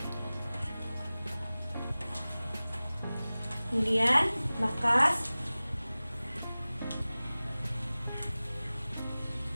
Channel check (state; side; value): inverted; both; correlation -0.98